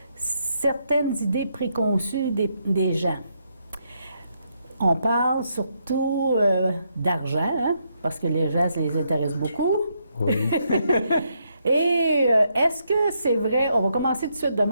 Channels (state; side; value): inverted; both; correlation -0.78